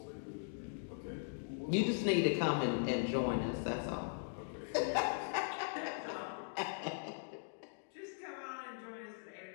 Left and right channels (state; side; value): silent; right; digital silence